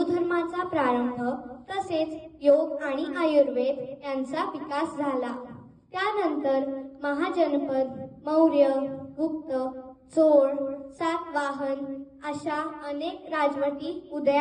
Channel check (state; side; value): identical; both; correlation 1.00